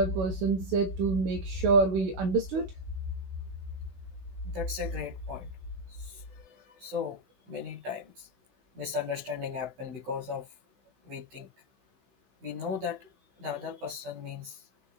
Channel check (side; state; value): left; late; 16 ms